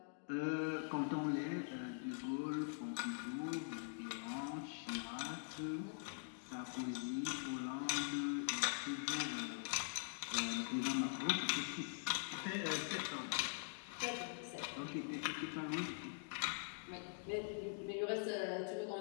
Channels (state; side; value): silent; right; digital silence